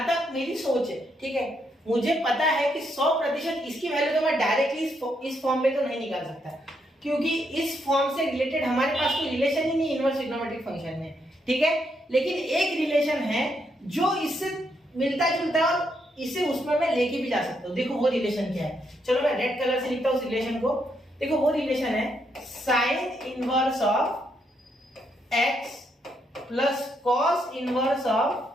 तक मेरी सोच है, ठीक है, मुझे पता है कि 100% इसकी वैल्यू तो मैं डायरेक्टली इस फॉर्म में तो नहीं निकाल सकता, क्योंकि इस फॉर्म से रिलेटेड हमारे पास कोई रिलेशन ही नहीं इनवर्स ट्रिग्नोमेट्रिक फंक्शन में। ठीक है, लेकिन एक रिलेशन है जो इससे मिलता जुलता है और इसे उसमें मैं लेके भी जा सकता हूँ। देखो वो रिलेशन क्या है, चलो मैं रेड कलर से लिखता हूँ उस रिलेशन को। देखो वो रिलेशन है sine inverse of x plus cos inverse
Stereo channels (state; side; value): normal; both; correlation 0.77